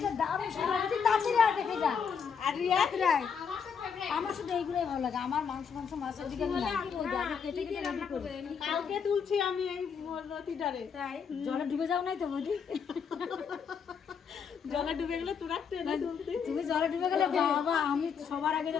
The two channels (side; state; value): right; quieter; 6.6 dB